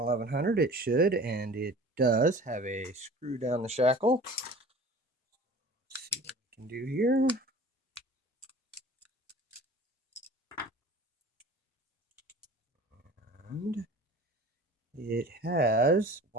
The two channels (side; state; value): both; normal; correlation 0.42